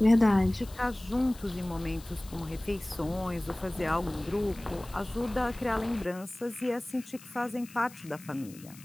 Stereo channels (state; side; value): noise; left; hiss, 20 dB below the sound